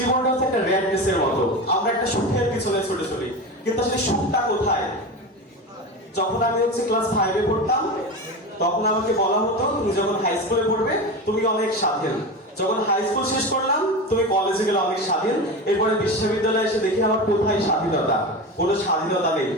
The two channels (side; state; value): both; normal; correlation 0.25